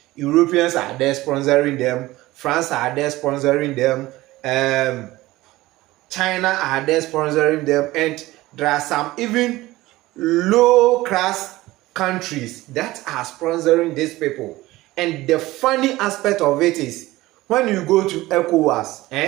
Europeans are there sponsoring them, France are there sponsoring them, China are there sponsoring them, and there are some even low-class countries that are sponsoring these people. And the funny aspect of it is, when you go to ECOWAS,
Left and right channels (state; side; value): quieter; left; 18.2 dB